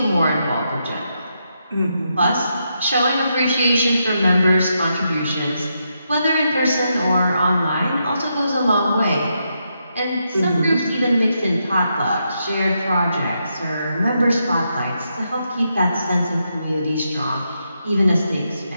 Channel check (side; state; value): both; inverted; correlation -0.82